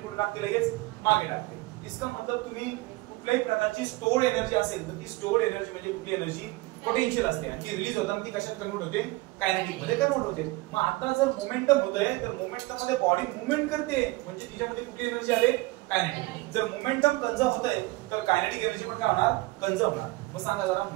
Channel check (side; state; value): left; quieter; 21.3 dB